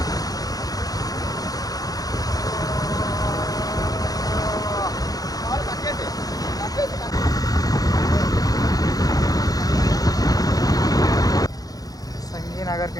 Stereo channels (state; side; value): late; right; 0.18 ms